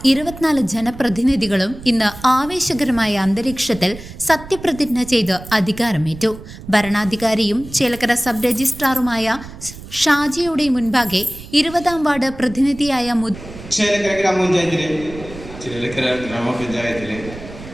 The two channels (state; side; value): noise; right; rumble, 15 dB below the sound